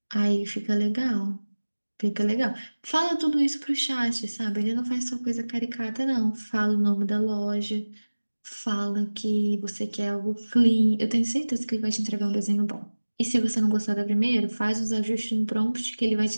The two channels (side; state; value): both; inverted; correlation -1.00